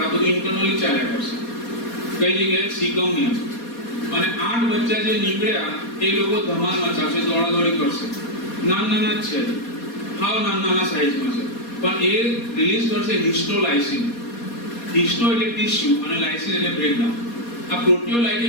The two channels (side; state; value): right; late; 4.2 ms